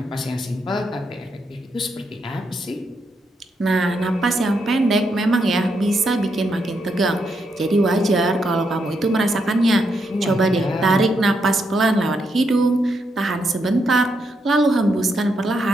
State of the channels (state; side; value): normal; both; correlation 0.80